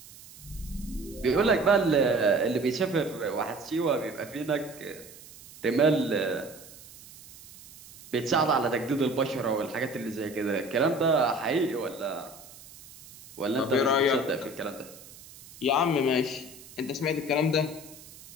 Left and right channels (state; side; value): noise; right; hiss, 19 dB below the sound